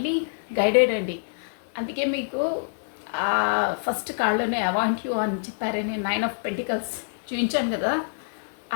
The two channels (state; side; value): silent; right; digital silence